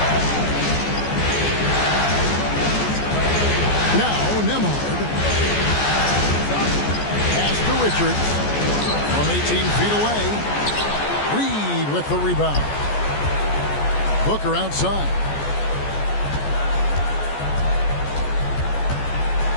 Now Nembhard. Pass to Richards. From 18 feet away. Reed with the rebound. Booker outside.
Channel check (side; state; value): right; late; 14 ms